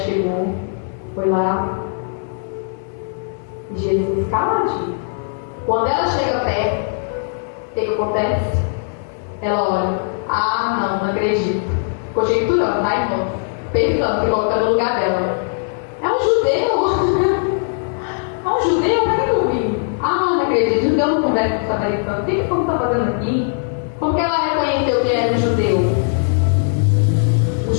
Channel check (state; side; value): silent; right; 61 dB below the other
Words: foi lá. E Jesus caladinho. Quando ela chega perto, o que acontece? Ela olha, não acredito. Conjecturando, tá, irmão? Pensando, se colocando no lugar dela. É um judeu. É um judeu, para que eu vim? Não acredito, judeu não conversa com o samaritano. O que você está fazendo aqui? Como que ela reconheceu que era um judeu? Os